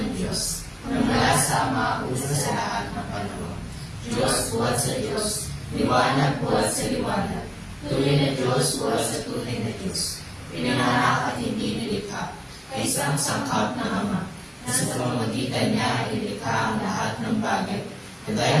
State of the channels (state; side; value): identical; both; correlation 1.00